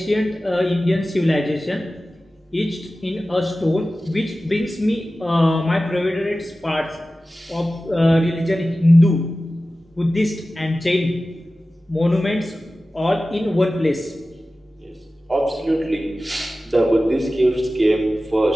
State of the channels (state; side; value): normal; both; correlation 0.95